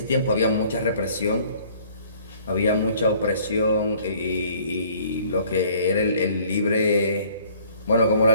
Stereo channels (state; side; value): inverted; both; correlation -0.56